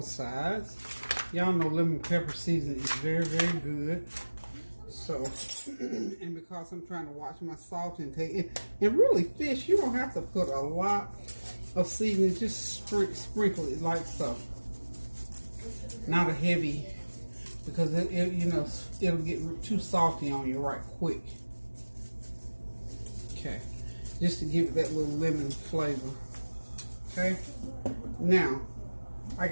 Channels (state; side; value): inverted; both; correlation -1.00